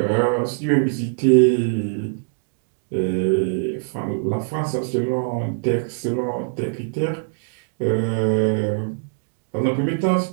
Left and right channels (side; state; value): left; silent; digital silence